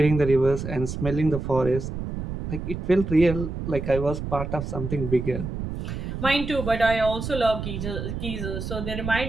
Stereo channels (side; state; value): right; noise; rumble, 6 dB below the sound